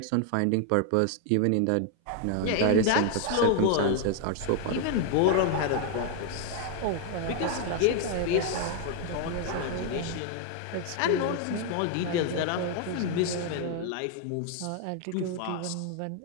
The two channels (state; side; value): different; both; correlation 0.00